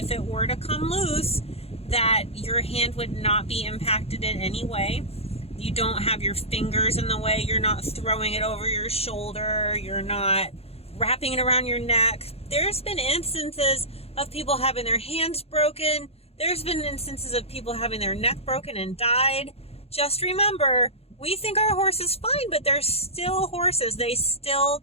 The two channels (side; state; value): right; late; 0.29 ms